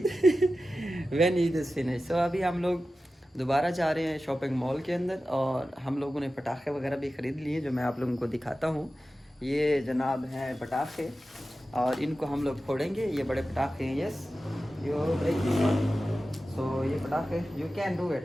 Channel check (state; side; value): normal; both; correlation 0.94